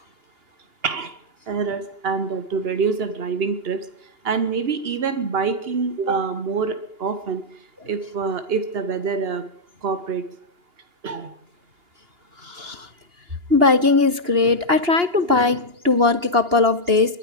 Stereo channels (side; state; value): left; late; 2.8 ms